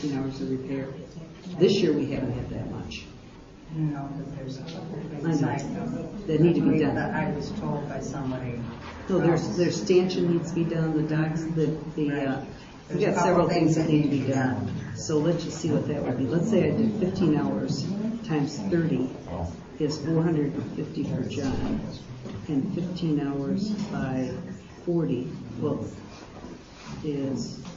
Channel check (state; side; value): identical; both; correlation 1.00